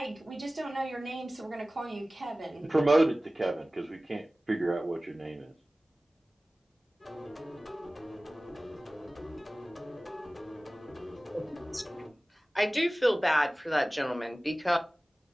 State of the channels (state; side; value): normal; both; correlation 0.97